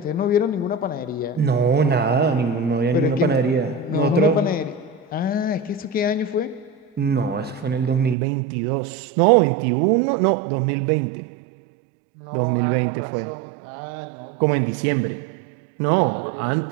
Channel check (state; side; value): drops out; left; at 8.2 s